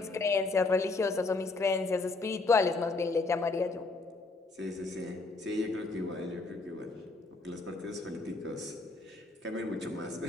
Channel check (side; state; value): right; quieter; 3.6 dB